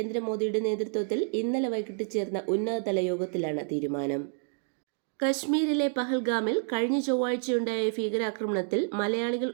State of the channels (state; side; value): silent; left; 59 dB below the other